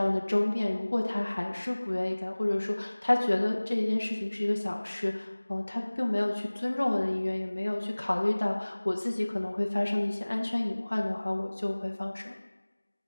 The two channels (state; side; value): inverted; both; correlation -1.00